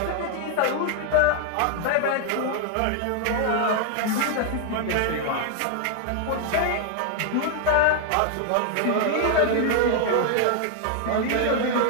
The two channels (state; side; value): different; both; correlation 0.00